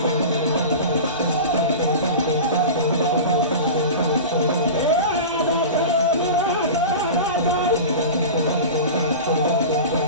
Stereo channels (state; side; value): inverted; both; correlation -0.30